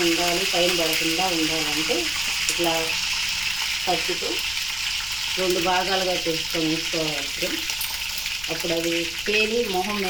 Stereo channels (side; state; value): left; noise; rumble, 16 dB below the sound